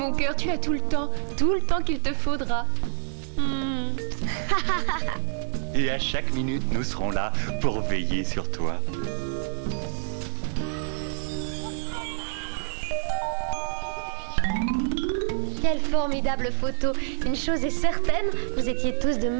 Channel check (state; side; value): silent; left; 60 dB below the other